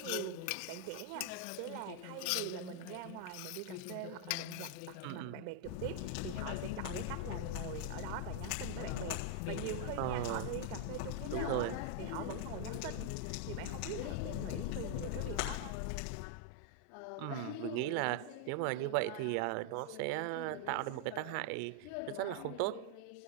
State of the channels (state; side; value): different; both; correlation 0.00